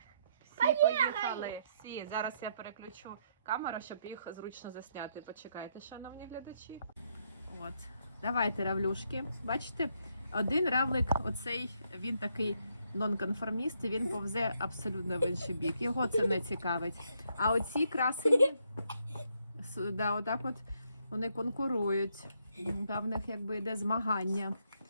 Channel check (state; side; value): inverted; both; correlation -0.75